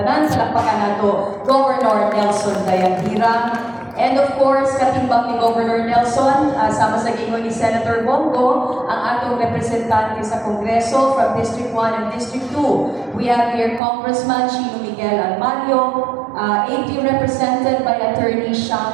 Palakpakan nato, Governor Nelson Dayanhirang. And of course, katimbang ni Governor Nelson, sama sa gingon ni Senator Bongo, ang atong representante sa Kongreso from District 1 and District 2. We have here Congressman Chino Miguel Almario, AP represented by Attorney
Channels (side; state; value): left; drops out; at 13.8 s